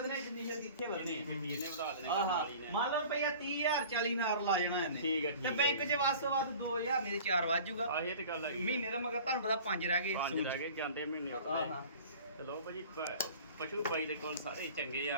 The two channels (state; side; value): inverted; both; correlation -0.43